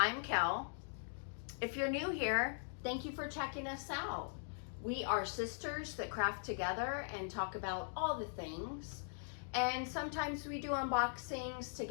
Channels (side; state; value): right; silent; digital silence